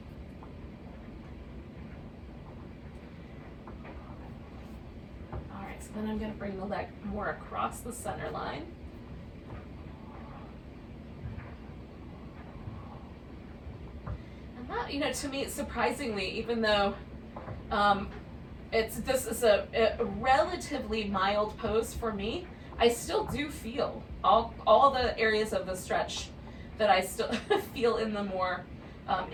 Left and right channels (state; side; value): identical; both; correlation 1.00